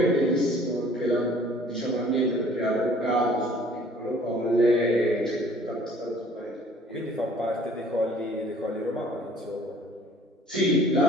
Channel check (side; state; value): both; normal; correlation 0.54